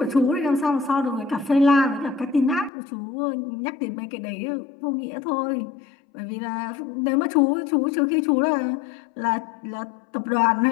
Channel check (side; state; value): right; drops out; at 2.7 s